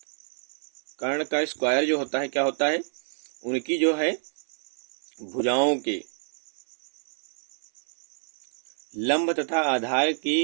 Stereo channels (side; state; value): left; silent; 59 dB below the other